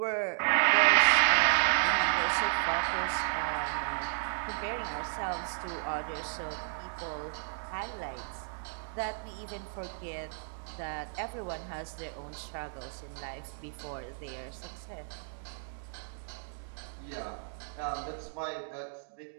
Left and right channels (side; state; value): left; silent; digital silence